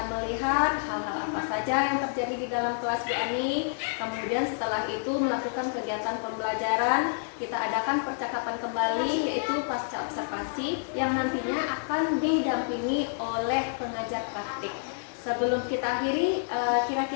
melihat hal-hal apa saja yang terjadi di dalam kelas Bu Ani. Kemudian setelah itu melakukan kegiatan pembelajaran. Kita adakan percakapan kembali yaitu pasca observasi yang nantinya akan didampingi oleh pengajar praktik. Sebelum kita akhiri,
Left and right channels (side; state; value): right; silent; 59 dB below the other